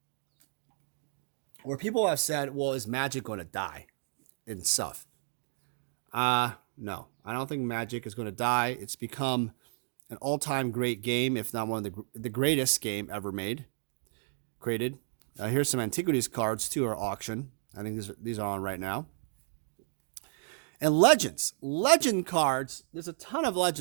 where people have said, well, is Magic going to die and stuff? No, I don't think Magic is going to die. It's become an all-time great game, if not one of the greatest game ever created. Here's some Antiquities cards too, are auction. I think these are on right now. And legend cards. There's a ton of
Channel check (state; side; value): silent; left; digital silence